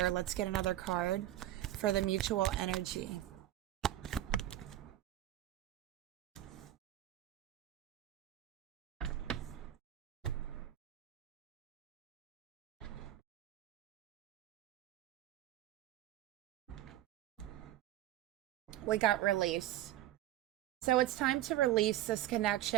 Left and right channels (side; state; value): left; quieter; 13.5 dB